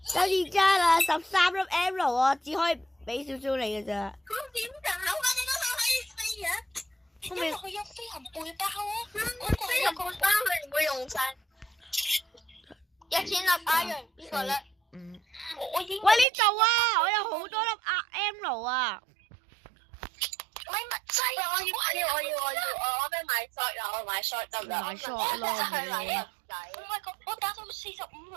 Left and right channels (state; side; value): drops out; left; at 16.2 s